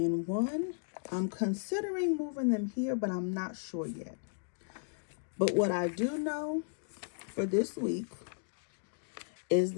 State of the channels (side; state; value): right; silent; digital silence